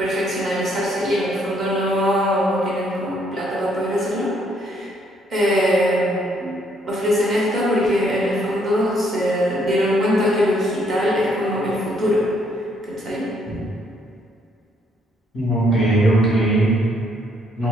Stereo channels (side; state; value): both; normal; correlation 0.69